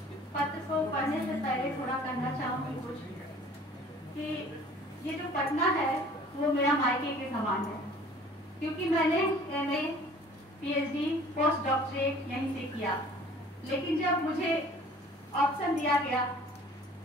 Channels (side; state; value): both; normal; correlation 0.50